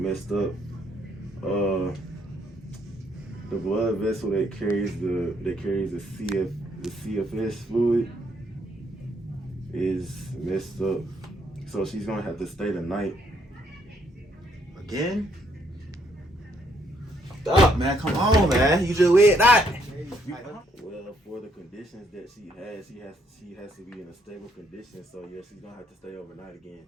up. The blood vessel that carries the CFS fluid is messed up. So she's gonna have to stay the night. Again? Stop, man. Come on, man. You just weird that. Well, for the conditions that she has to be in a stable condition. So yeah, she's gonna have to stay overnight again.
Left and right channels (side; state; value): both; normal; correlation 0.71